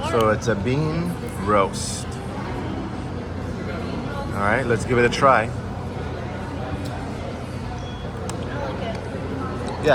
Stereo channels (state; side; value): identical; both; correlation 1.00